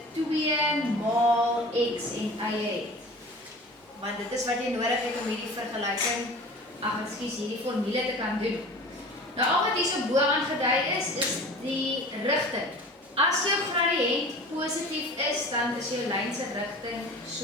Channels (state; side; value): normal; both; correlation 0.40